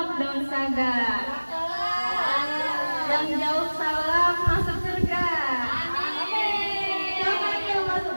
daun saga. Yang jauh salam masuk surga. Amin. Siapa nih yang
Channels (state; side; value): inverted; both; correlation -1.00